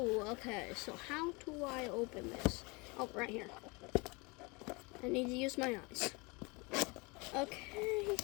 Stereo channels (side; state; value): right; quieter; 27.8 dB